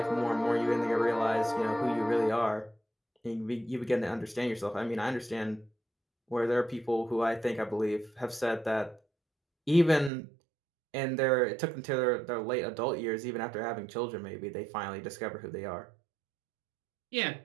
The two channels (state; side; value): drops out; left; at 10.1 s